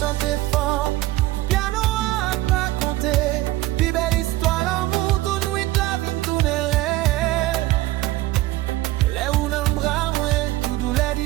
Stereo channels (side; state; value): left; quieter; 17.5 dB